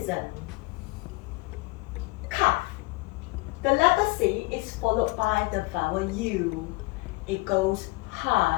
Cuff. The letter C is followed by the vowel U. It goes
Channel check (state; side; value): quieter; right; 24.4 dB